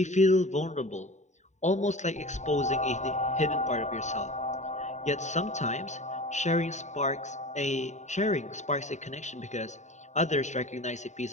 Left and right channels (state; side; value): late; right; 0.34 ms